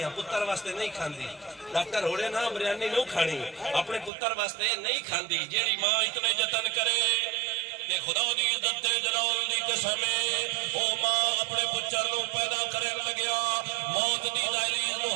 پتر واسطے نہیں کھاندی. ڈاکٹر ہوڑے نا بریانی نو کھانی اپنے پتر واسطے نہیں کھاندی. جیڑی ماں اتنے جتن کرے تے خدا دی عزت تے جلال دی قسم ہے او ماں اپنے پچر نو پیدا کرن لگیا موت دی دہلیز نو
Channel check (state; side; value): drops out; left; at 4.1 s